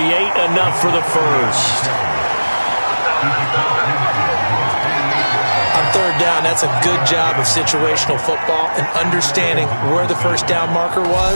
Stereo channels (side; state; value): both; inverted; correlation -1.00